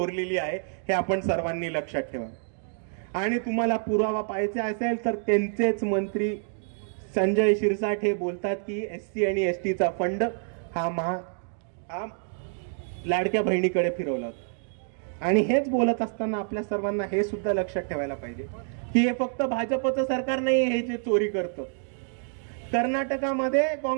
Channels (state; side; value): silent; left; 60 dB below the other